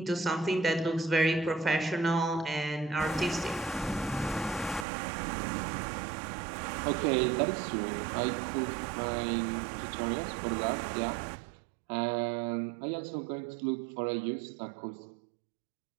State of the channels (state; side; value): drops out; left; at 4.9 s